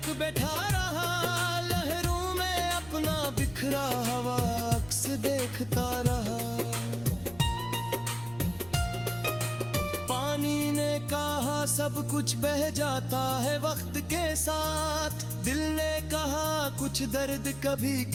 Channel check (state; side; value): noise; left; rumble, 20 dB below the sound